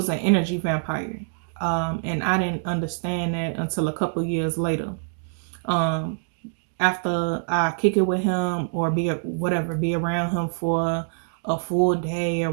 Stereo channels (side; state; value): left; silent; digital silence